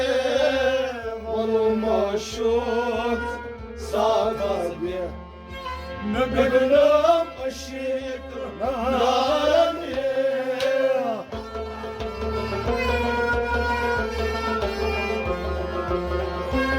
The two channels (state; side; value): identical; both; correlation 1.00